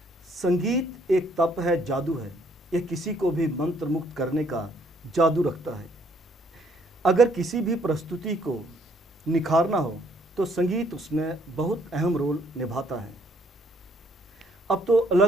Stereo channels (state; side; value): normal; both; correlation 0.66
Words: संगीत एक तप है, जादू है। यह किसी को भी मंत्र मुक्त करने का जादू रखता है। अगर किसी भी प्रस्तुति को निखारना हो तो संगीत उसमें बहुत अहम रोल निभाता है। अब तो